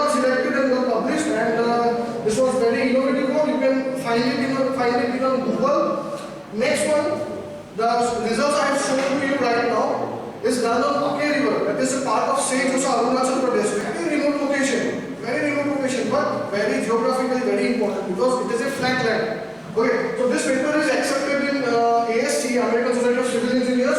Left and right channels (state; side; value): identical; both; correlation 1.00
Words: selected and got published. And this was very innovative work. You can find it on Google. Next one. The results I have shown to you right now is done on Ake River. That is a part of St. Lucia, Arunachal Pradesh. Very remote location, but very geographically very important because it is a flat land. Okay, so this paper is accepted in ASC, American Society of Civil